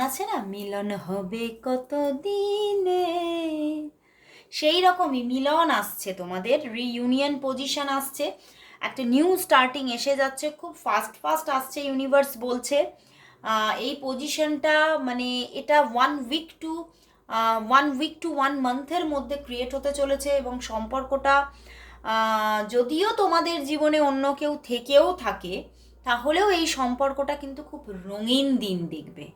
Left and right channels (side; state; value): both; identical; correlation 1.00